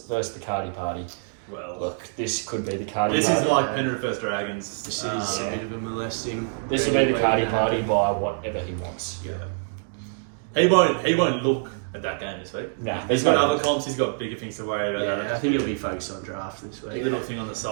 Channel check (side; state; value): left; silent; digital silence